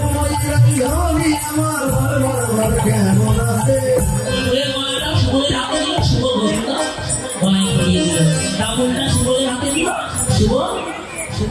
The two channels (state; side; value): identical; both; correlation 1.00